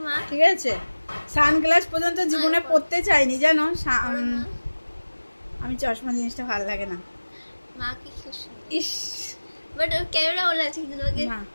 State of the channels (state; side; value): inverted; both; correlation -1.00